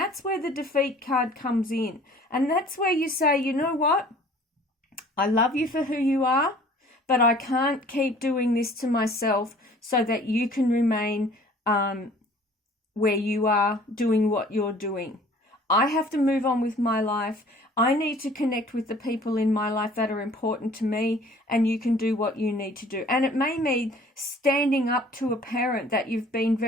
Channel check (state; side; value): normal; both; correlation 0.51